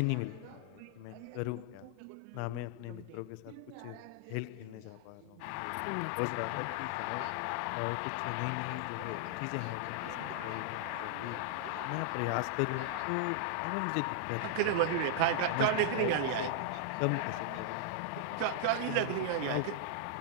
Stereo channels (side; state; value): both; different; correlation -0.01